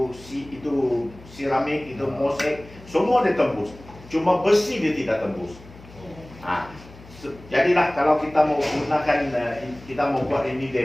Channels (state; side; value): noise; left; hum, 20 dB below the sound